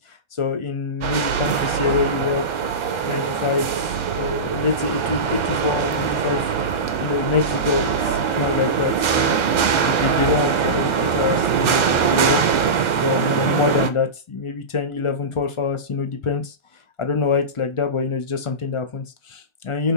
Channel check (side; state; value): right; late; 1.3 ms